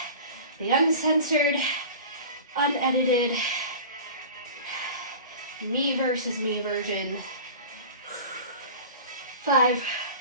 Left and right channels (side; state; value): both; inverted; correlation -0.37